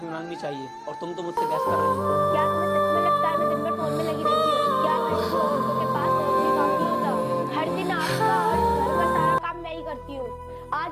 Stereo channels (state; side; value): identical; both; correlation 1.00